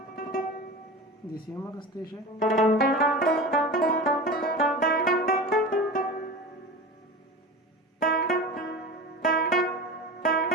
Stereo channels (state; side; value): normal; both; correlation 0.31